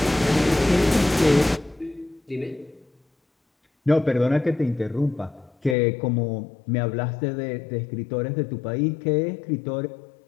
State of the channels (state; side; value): drops out; right; at 5.8 s